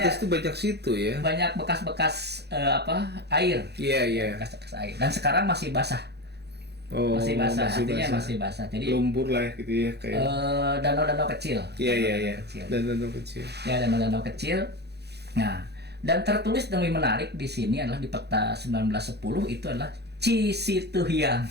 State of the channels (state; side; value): late; left; 0.48 ms